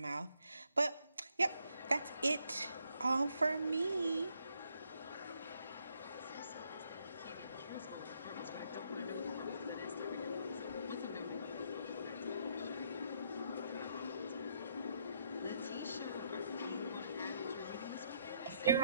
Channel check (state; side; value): inverted; both; correlation -0.73